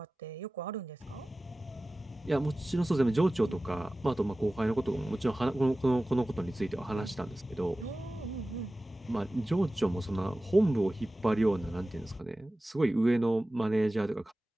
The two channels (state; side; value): normal; both; correlation 0.96